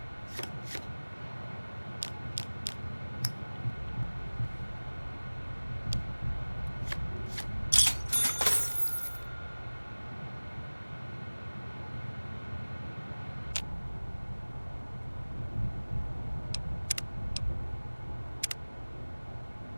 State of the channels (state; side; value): inverted; both; correlation -1.00